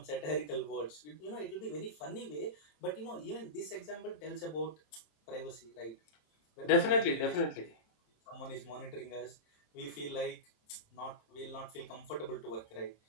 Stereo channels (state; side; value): late; right; 27 ms